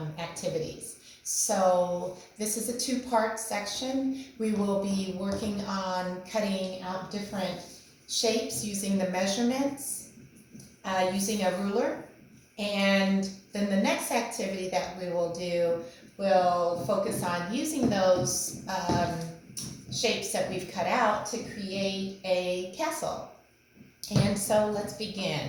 activities. So this is a two-part section. We will be working on cutting out different shapes using the measurements, using a ruler, and then the next activity that we will do will focus on using those shapes that we've cut out to create a castle. And so let's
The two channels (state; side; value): identical; both; correlation 1.00